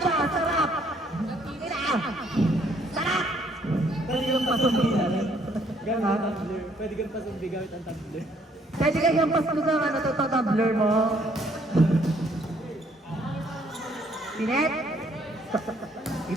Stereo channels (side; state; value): both; normal; correlation 0.65